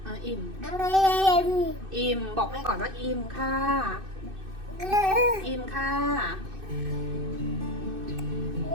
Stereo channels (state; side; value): late; left; 2.6 ms